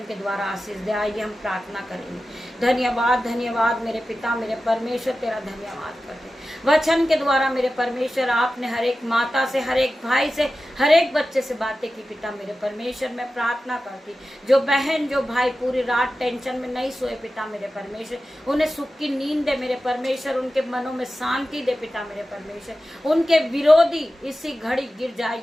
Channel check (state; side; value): normal; both; correlation 0.93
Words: के द्वारा आशीष दे। आइए हम प्रार्थना करेंगे। धन्यवाद धन्यवाद मेरे पिता मेरे परमेश्वर, तेरा धन्यवाद करते। वचन के द्वारा मेरे परमेश्वर आपने हर एक माता से, हर एक भाई से, हर एक बच्चे से बातें की। पिता मेरे परमेश्वर, मैं प्रार्थना करती, जो बहन जो भाई पूरी रात टेंशन में नहीं सोए, पिता मेरे परमेश्वर उन्हें सुख की नींद दे। मेरे परमेश्वर उनके मनों में शांति दे। पिता मेरे परमेश्वर उनके विरोधी इसी घड़ी गिर जाए